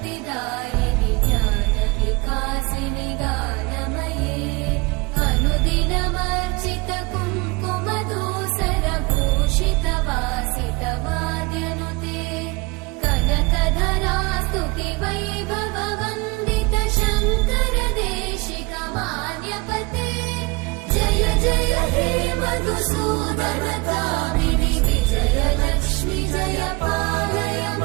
ज्ञानविकासिनि गानमये अनुदिनमर्चित कुङ्कुमधूसरभूषितवासित वाद्यनुते कनकधरा स्तुति वैभववन्दित शङ्कर देशिक मान्यपते जय जय हे मधुसूदन कामिनि विजयलक्ष्मि जय पालय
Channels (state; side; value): quieter; left; 25.8 dB